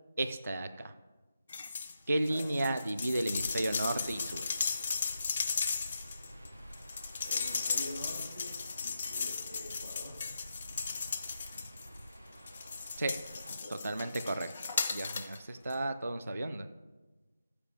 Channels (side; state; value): both; inverted; correlation -0.86